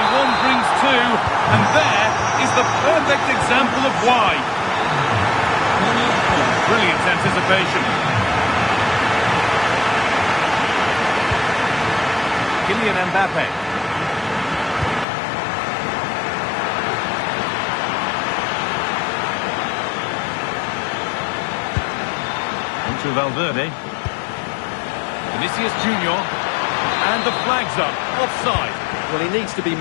one brings two, and there is the perfect example of why. Brilliant anticipation. Kylian Mbappe. To Valverde. Vinicius Junior. And the flag's up. Offside. Well, he needs to be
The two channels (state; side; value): drops out; right; at 15.1 s